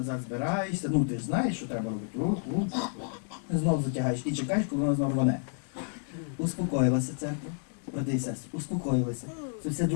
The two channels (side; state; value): right; silent; digital silence